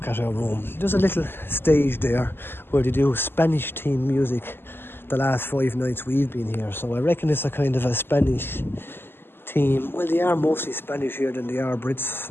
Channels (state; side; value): late; right; 0.11 ms